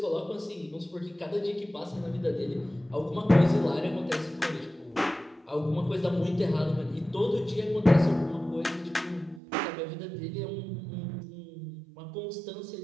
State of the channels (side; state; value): left; drops out; at 9.4 s